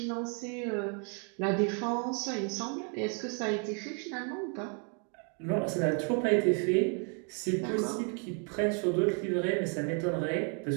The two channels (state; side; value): quieter; left; 38.9 dB